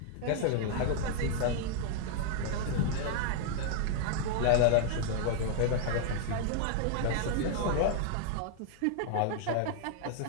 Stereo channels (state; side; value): different; both; correlation 0.00